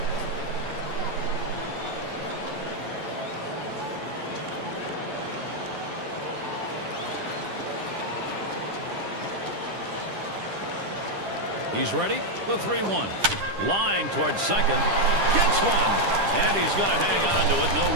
He's ready. The 3-1. Line towards second. Gets one. And he's going to hang on to it. No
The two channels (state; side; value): late; left; 10 ms